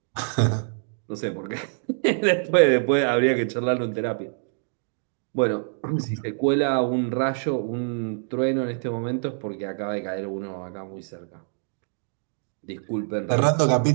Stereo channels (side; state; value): left; silent; digital silence